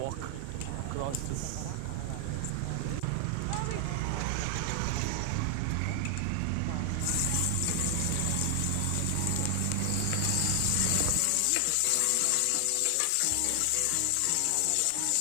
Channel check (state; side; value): different; both; correlation 0.00